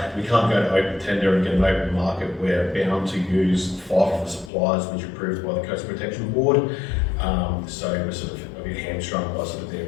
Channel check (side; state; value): right; drops out; at 4.5 s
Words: can't go to open tender and get an open market. We're bound to use 5 of the suppliers which are approved by the Coastal Protection Board. So we're sort of a bit hamstrung by sort of